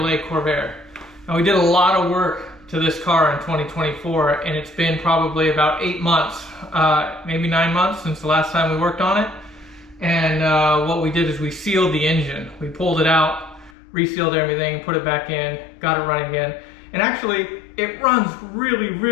Corvair. Now we did a lot of work to this car in 2024, and it's been probably about 8 months, maybe 9 months since the last time we worked on it. And what we did is we sealed the engine. We pulled it out, resealed everything, put it back in, got it running again. And actually, it runs really,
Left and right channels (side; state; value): right; drops out; at 13.7 s